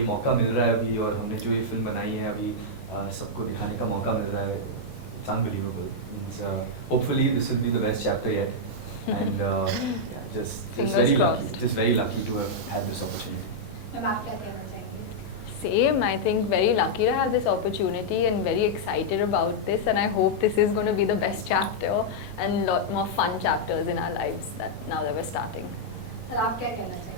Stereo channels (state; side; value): late; right; 14 ms